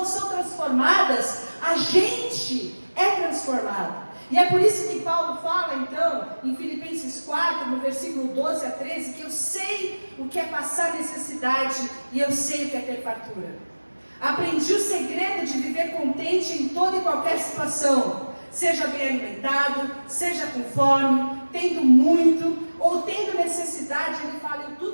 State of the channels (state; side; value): inverted; both; correlation -1.00